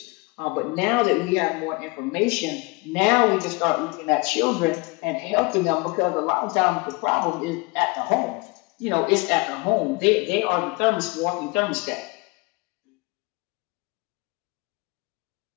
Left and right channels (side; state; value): right; quieter; 25.3 dB